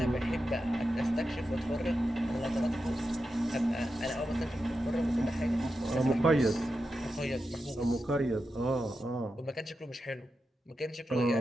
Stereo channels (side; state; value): both; normal; correlation 0.89